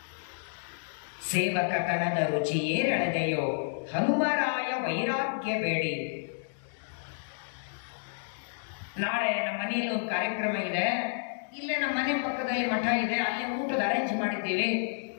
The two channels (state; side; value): silent; right; digital silence